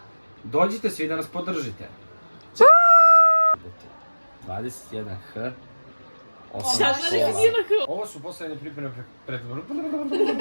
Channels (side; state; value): both; inverted; correlation -1.00